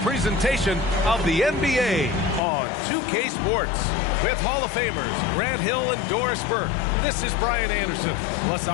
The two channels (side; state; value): right; drops out; at 2.4 s